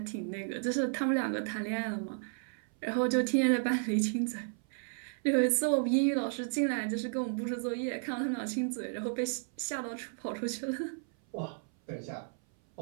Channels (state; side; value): silent; left; 56 dB below the other